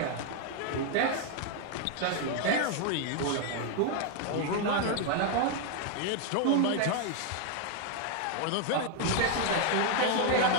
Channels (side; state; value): both; different; correlation 0.00